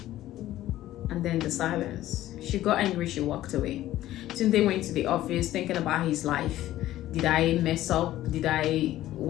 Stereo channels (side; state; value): right; quieter; 14.3 dB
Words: And then the silence. She got angry, she walked away. Tunde went to the office thinking about his life. Did I mess up? Did I